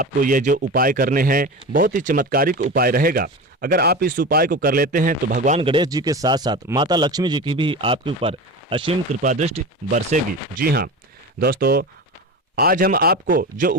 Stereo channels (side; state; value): both; normal; correlation 0.28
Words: ये जो उपाय करने हैं बहुत ही चमत्कारिक उपाय रहेगा। अगर आप इस उपाय को कर लेते हैं तो भगवान गणेश जी के साथ साथ माता लक्ष्मी जी की भी आपके ऊपर असीम कृपा दृष्टि बरसेगी। जी हाँ दोस्तों, आज हम आपको जो